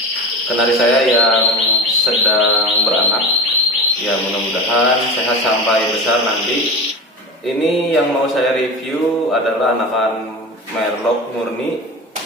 kenari saya yang sedang beranak. Ya, mudah-mudahan sehat sampai besar nanti. Ini yang mau saya review adalah anakan merlok murni.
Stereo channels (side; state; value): both; normal; correlation 0.28